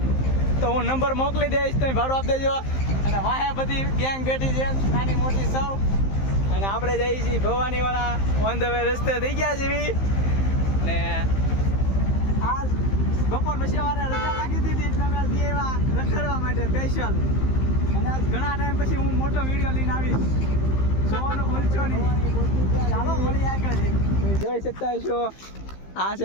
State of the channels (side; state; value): right; late; 15 ms